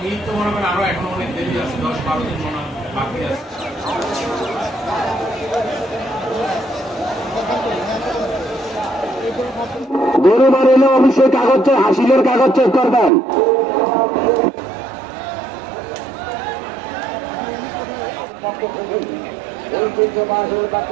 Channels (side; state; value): left; drops out; at 13.1 s